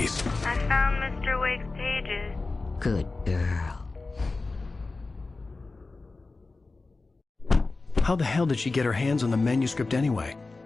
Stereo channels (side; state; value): right; quieter; 3.6 dB